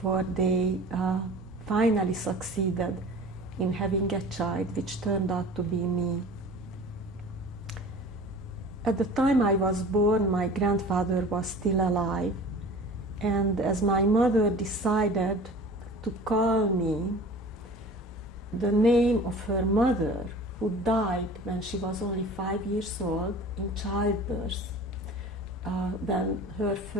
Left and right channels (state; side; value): normal; both; correlation 0.42